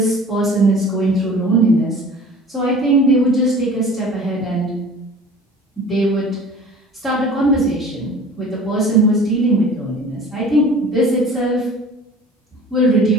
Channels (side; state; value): both; normal; correlation 0.44